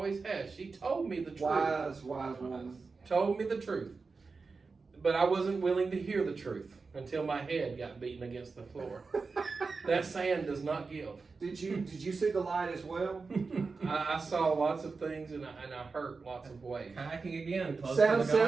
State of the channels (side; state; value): left; quieter; 4.4 dB